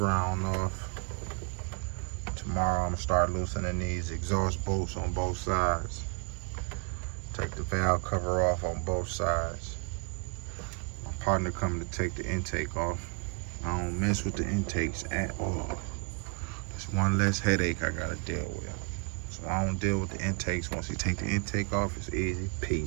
off. Tomorrow I'm gonna start loosening these exhaust bolts on both sides. Take the valve cover off on both sides. My partner coming to take the intake off. I don't mess with the intakes at all. It's one less headache I gotta deal with. So I don't deal with the intakes. Once you take the intake off, it's easy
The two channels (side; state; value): left; quieter; 35.3 dB